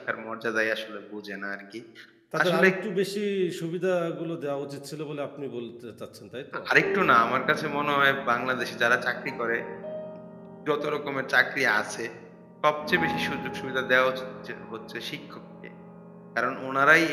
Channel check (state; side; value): identical; both; correlation 1.00